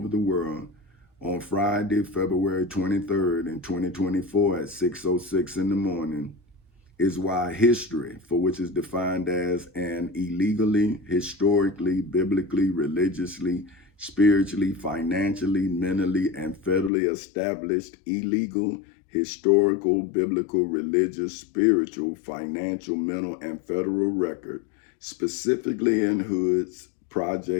the world on Friday, February 23rd in 2024 at 6:06 in the morning is why history, for which is defined as an illegally, historically, biblically, religiously, spiritually, financially, mentally, and federally established illegal, historical, biblical, religious, spiritual, financial, mental, and federal record, specifically in hoods,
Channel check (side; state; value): right; drops out; at 16.9 s